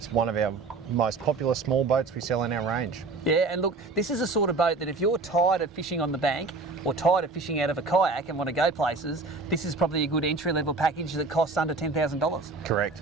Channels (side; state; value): left; quieter; 3.6 dB